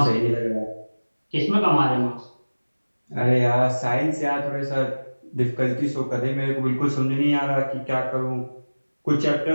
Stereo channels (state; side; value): inverted; both; correlation -1.00